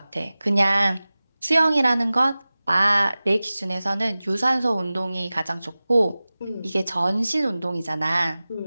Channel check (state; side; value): inverted; both; correlation -0.97